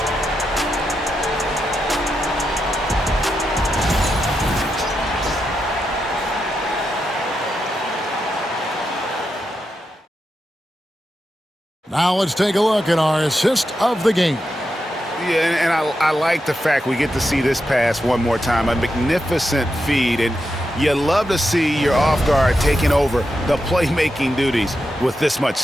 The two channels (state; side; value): normal; both; correlation 0.87